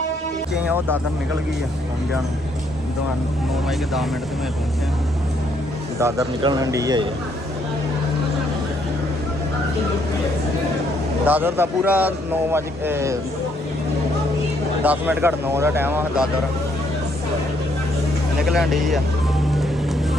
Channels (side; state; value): both; normal; correlation 0.71